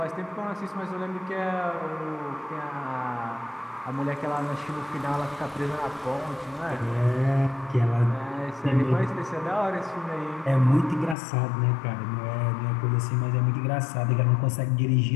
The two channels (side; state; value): right; drops out; at 11.2 s